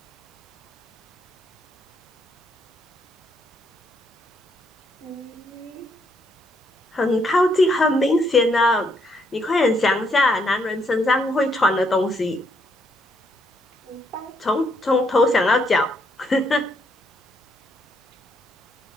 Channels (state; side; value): normal; both; correlation 0.74